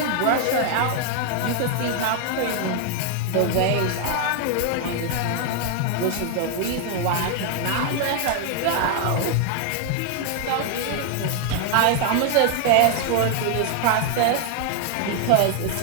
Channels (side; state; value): both; different; correlation 0.00